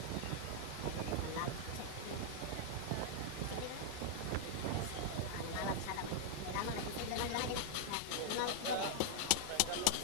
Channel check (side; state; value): both; different; correlation 0.00